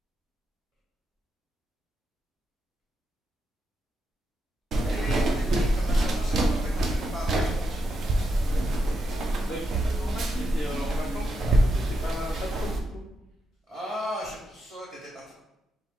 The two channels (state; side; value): normal; both; correlation 0.84